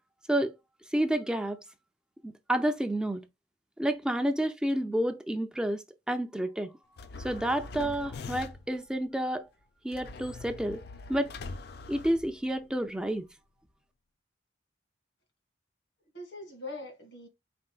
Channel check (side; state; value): both; normal; correlation 0.85